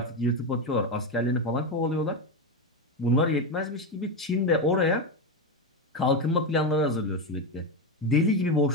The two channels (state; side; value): normal; both; correlation 0.11